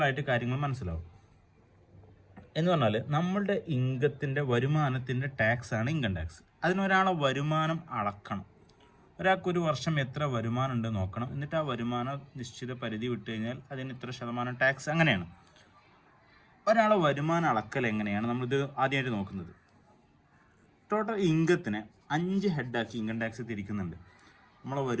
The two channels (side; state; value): both; identical; correlation 1.00